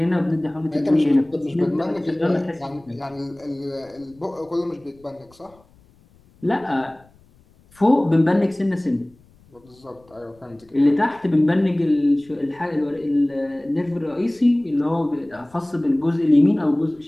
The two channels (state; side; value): noise; left; rumble, 30 dB below the sound